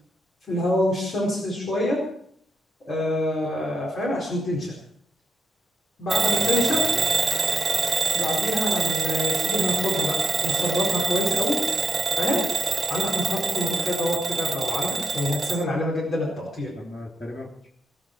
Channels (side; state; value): both; normal; correlation 0.81